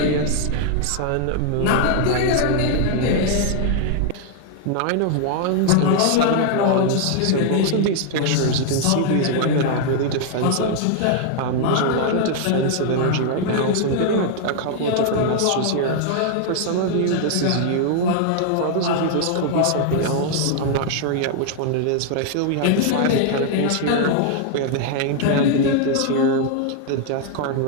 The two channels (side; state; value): both; different; correlation 0.00